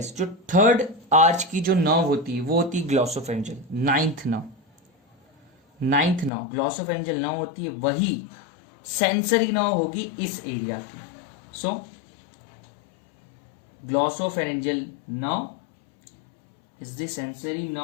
जो 3rd आर्च की जो नर्व होती है वो होती है glossopharyngeal. 9th nerve glossopharyngeal nerve होती है, वही सेंसरी नर्व होगी इस एरिया की। So glossopharyngeal nerve is the sensory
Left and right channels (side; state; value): right; drops out; at 6.3 s